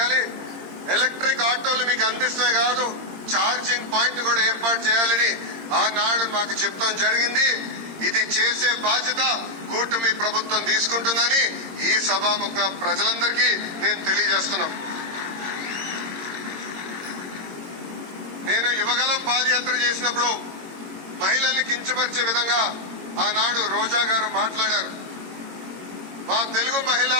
ఎలక్ట్రిక్ ఆటోలు మీకు అందిస్తే కాదు, ఛార్జింగ్ పాయింట్ కూడా ఏర్పాటు చేయాలని ఆనాడు మాకు చెప్తాం జరిగింది. ఇది చేసే బాధ్యత కూటమి ప్రభుత్వం తీసుకుంటుందని ఈ సభాముఖ ప్రజలందరికీ నేను తెలియజేస్తున్నాం. నేను యువగలం పాదయాత్ర చేసినప్పుడు మహిళల్ని కించపరిచే విధంగా ఆనాడు రోజా గారు మాట్లాడారు. మా తెలుగు మహిళ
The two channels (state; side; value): late; left; 22 ms